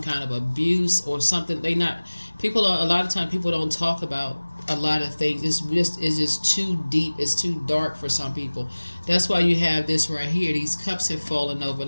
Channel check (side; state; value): both; inverted; correlation -1.00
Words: kind of abuse or something, a lot of times people don't talk about a lot of things. It's just too deep, it's too dark for some people. That's why you have this right here. These cups have fallen over,